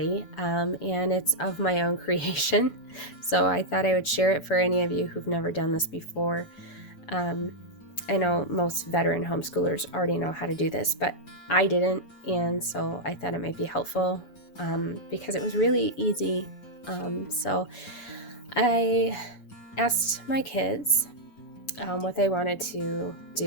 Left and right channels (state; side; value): late; right; 7.0 ms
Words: and it's of my own creation. So I thought I would share it for any of you who've never done this before. I know most veteran homeschoolers already know how to do this, but I didn't, and so I thought it might be helpful because it was really easy. So I asked my kids what they wanted to